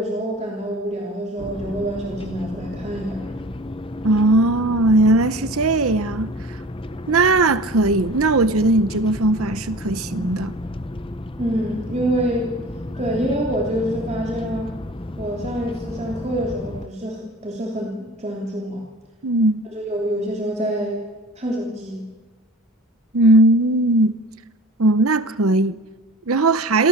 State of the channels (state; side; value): normal; both; correlation 0.40